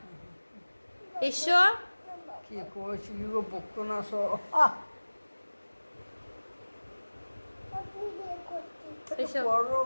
এসো। কি করছি গো, বকতো না সব। এসো করো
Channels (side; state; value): both; inverted; correlation -1.00